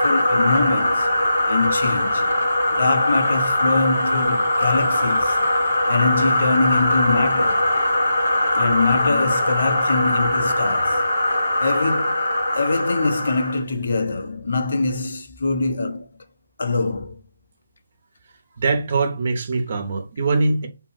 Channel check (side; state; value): both; inverted; correlation -0.86